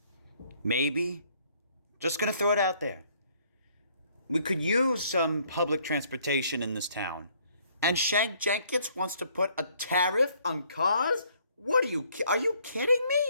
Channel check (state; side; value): inverted; both; correlation -0.64